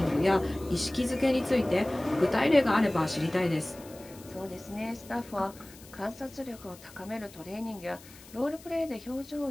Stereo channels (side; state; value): left; noise; hiss, 21 dB below the sound